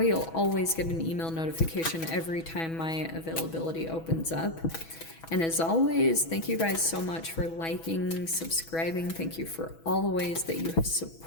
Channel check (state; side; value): late; right; 6.1 ms